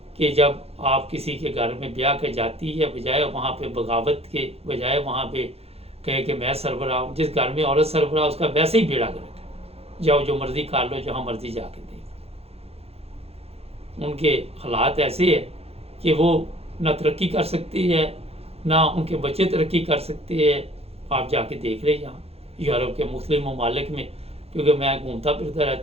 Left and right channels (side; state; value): left; late; 0.29 ms